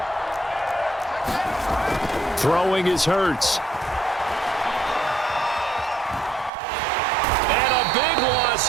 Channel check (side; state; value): left; drops out; at 6.5 s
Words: Throwing is Hurts. And a big loss